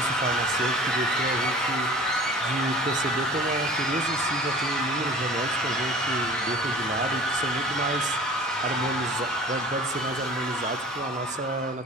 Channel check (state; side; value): normal; both; correlation 0.43